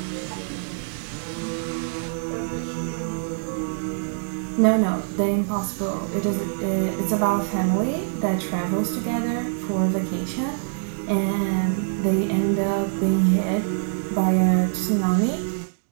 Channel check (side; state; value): left; silent; digital silence